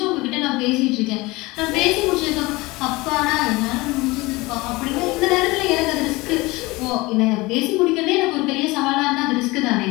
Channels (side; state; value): right; quieter; 22.0 dB